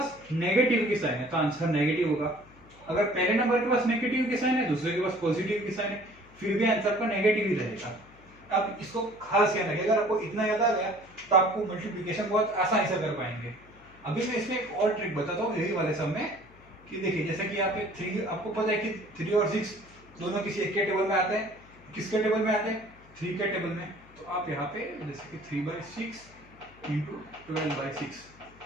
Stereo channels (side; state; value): left; noise; hum, 25 dB below the sound